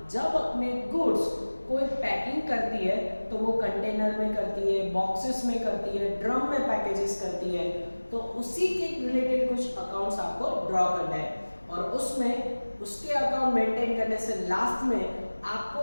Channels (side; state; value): both; inverted; correlation -1.00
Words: जब अपने गुड्स कोई पैकिंग करती है तो वो कंटेनर में करती है, बॉक्सेस में करती है, ड्रम में पैकेजेस करती है, तो उसी के रिलेटेड कुछ अकाउंट्स आपको ड्रॉ करना है और उसमें उसके अकाउंट मेंटेन करने से लास्ट में आपको